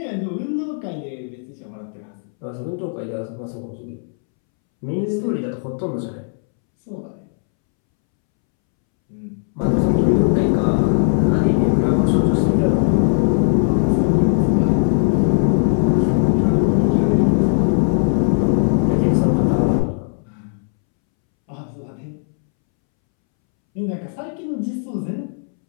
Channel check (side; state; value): right; silent; 66 dB below the other